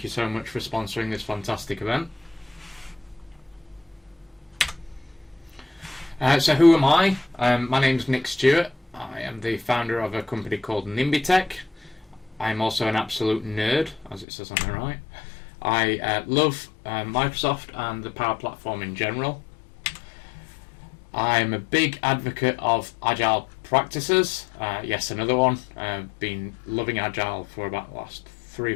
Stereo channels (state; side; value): drops out; right; at 14.2 s